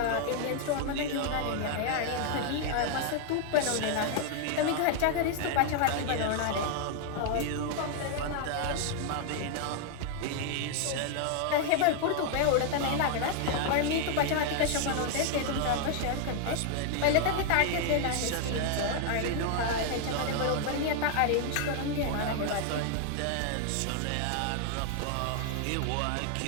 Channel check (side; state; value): both; different; correlation 0.00